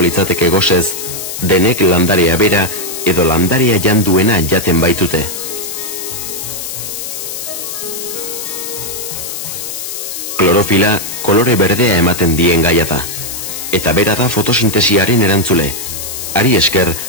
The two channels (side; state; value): left; noise; hiss, 7 dB below the sound